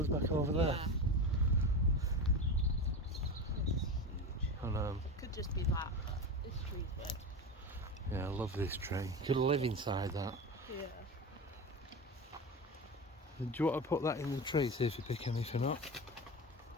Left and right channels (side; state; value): both; normal; correlation 0.24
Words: back over there? Yeah. It's huge. I know. Could just be that. This tree's big. Yeah, I love this tree. You could live inside that. Yeah. Do you want to put that in the tree, see if you pick anything up?